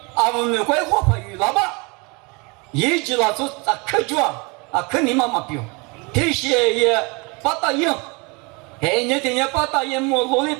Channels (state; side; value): quieter; left; 29.0 dB